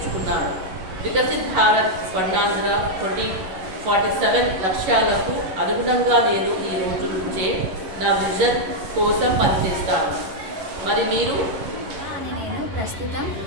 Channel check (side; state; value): left; late; 11 ms